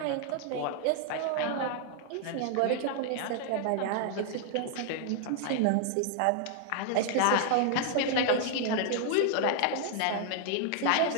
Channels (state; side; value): different; both; correlation 0.00